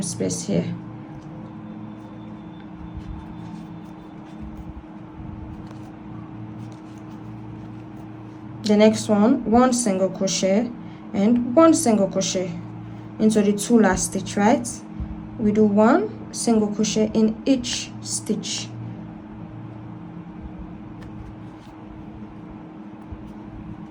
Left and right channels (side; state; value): both; identical; correlation 1.00